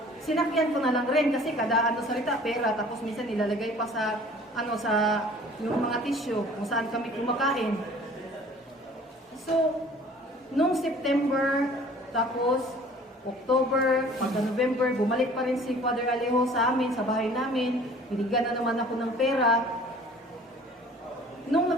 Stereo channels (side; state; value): both; normal; correlation 0.50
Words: sinakyan ko na lang rin kasi kada salita pera, tapos minsan nilalagay pa sa sa yung mga tissue kung saan kami kumakain. So, nung September, tapos October, pagka November, bumalik pa rin si Father Alejo sa amin, sa bahay namin. Binigyan na naman ako ng pera. Nung